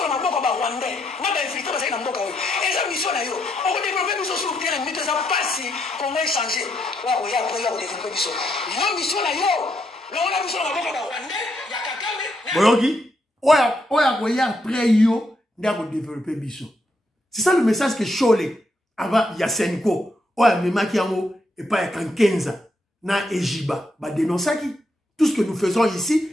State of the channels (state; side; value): normal; both; correlation 0.78